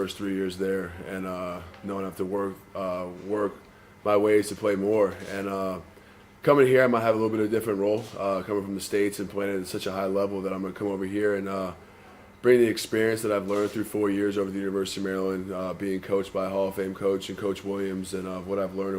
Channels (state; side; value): identical; both; correlation 1.00